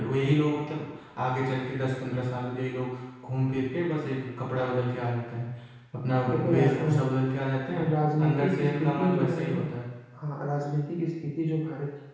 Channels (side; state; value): both; identical; correlation 1.00